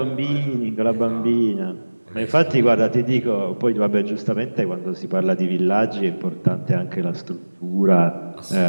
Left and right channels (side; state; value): both; inverted; correlation -1.00